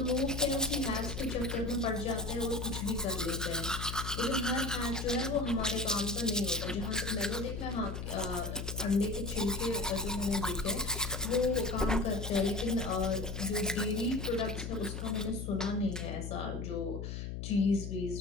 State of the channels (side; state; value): left; noise; hum, 5 dB below the sound